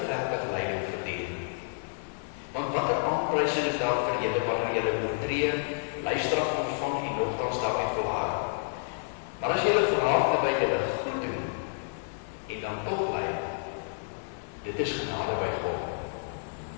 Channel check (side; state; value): right; silent; digital silence